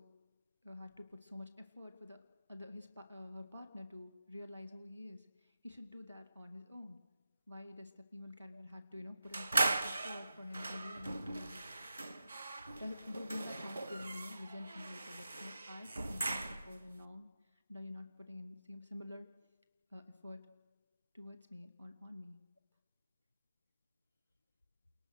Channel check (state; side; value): inverted; both; correlation -0.90